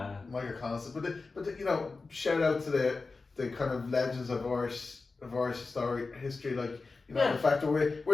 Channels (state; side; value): quieter; right; 4.0 dB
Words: Michael Collins, but you know, shout out to the kind of legends of Irish history, like you know the fact that